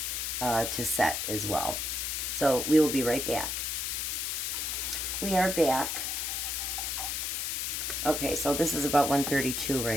to set as well. So we will be right back. We are back. Okay, so this is about 132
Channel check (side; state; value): left; noise; hiss, 1 dB below the sound